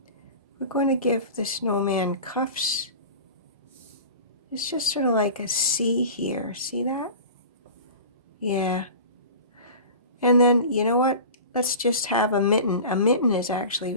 we're going to give the snowman cuffs. It's just sort of like a C here. See that? Yeah. And then, you know what? Let's just have a mitten. A mitten is actually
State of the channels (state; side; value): inverted; both; correlation -0.36